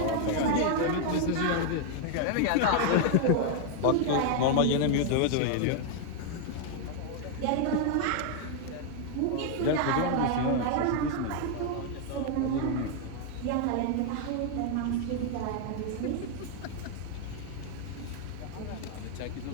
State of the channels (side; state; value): both; different; correlation 0.00